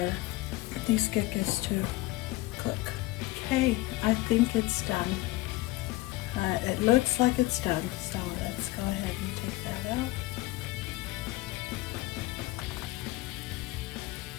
these kekes to cook. Okay, I think it's done. It looks like it's done, so let's go ahead and take that out.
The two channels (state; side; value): quieter; right; 19.1 dB